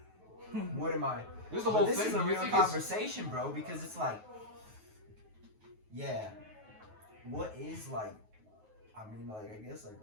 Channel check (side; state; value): left; late; 9.3 ms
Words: what am I? This is the whole thing. This is a real conversation, bro, because it's like, yeah, what is like? I mean, like, I guess like,